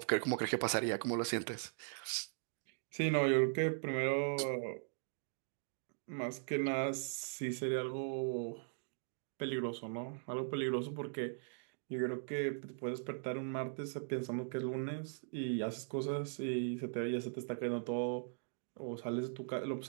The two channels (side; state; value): left; silent; digital silence